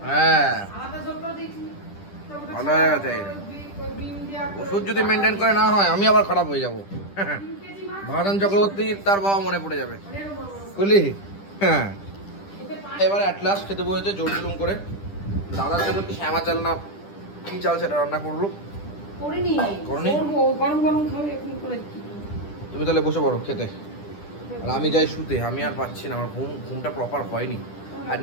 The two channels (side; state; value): right; late; 10 ms